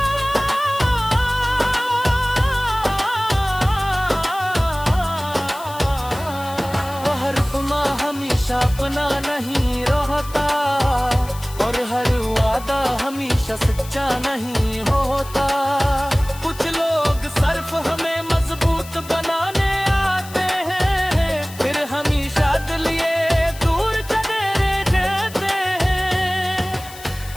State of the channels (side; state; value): left; noise; hiss, 17 dB below the sound